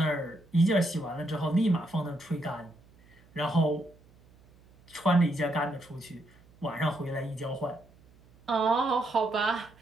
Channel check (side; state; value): right; noise; hum, 28 dB below the sound